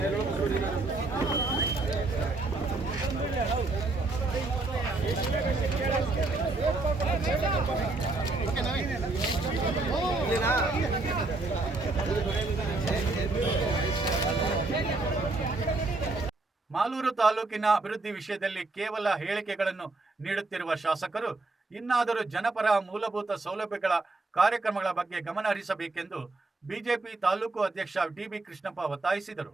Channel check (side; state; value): left; quieter; 3.3 dB